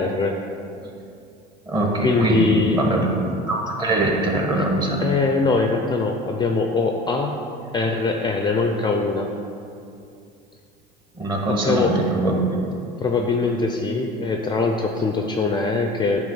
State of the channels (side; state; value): both; normal; correlation 0.42